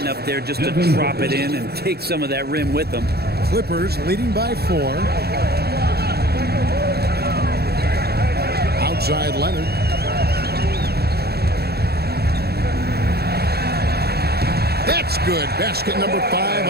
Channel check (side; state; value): left; late; 0.46 ms